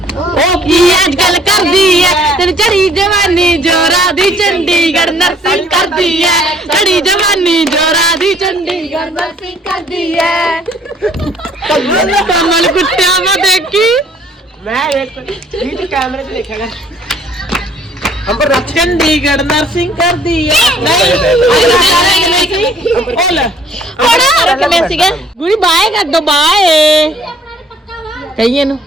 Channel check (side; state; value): both; normal; correlation 0.60